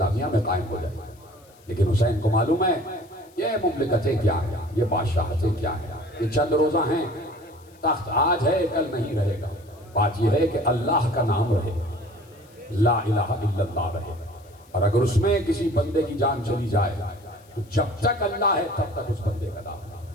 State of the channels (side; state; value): left; noise; hiss, 29 dB below the sound